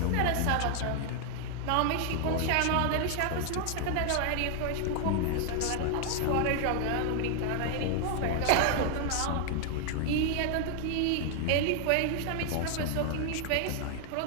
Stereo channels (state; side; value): different; both; correlation 0.00